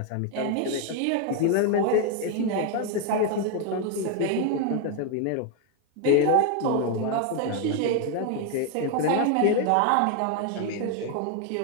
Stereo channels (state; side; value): different; both; correlation 0.01